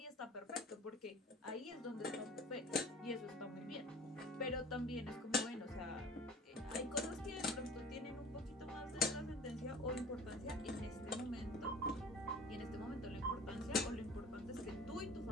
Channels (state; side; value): normal; both; correlation 0.42